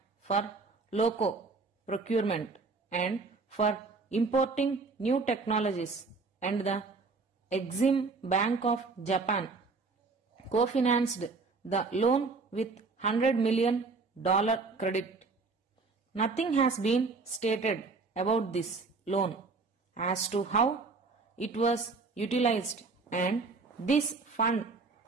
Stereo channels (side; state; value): left; quieter; 4.2 dB